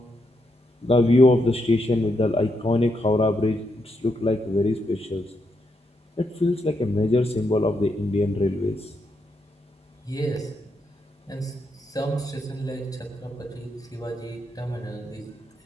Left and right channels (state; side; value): normal; both; correlation 0.81